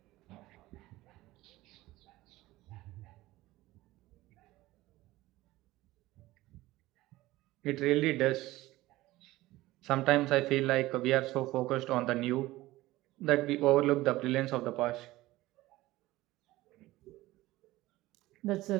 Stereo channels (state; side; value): quieter; left; 17.8 dB